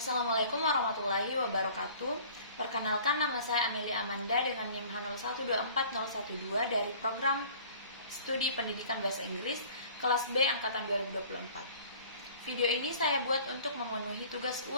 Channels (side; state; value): both; inverted; correlation -0.49